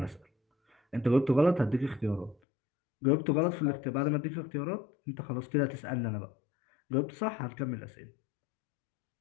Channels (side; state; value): right; drops out; at 2.4 s